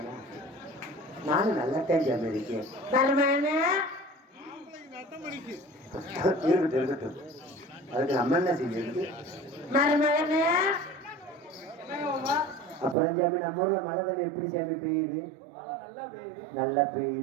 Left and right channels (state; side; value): drops out; left; at 13.0 s